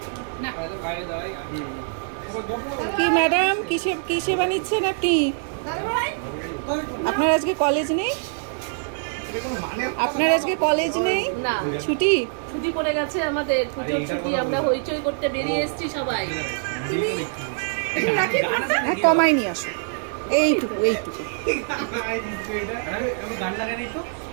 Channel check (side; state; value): left; silent; 62 dB below the other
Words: কি ম্যাডাম কিসে বানিয়েছেন আপনি? আপনার আজকে কলেজ নেই? আপনার আজকে কলেজ নেই? না, ছুটি পড়ে গেছে আমাদের, পুজোর ছুটি। আমরা হইচই করতে বেরিয়ে এসেছি সবাই। হ্যাঁ, কমাই নিয়ে আসো, এইটুকু।